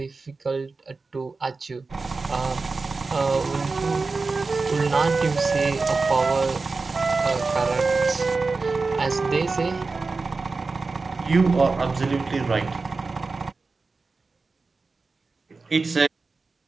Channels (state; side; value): quieter; left; 4.0 dB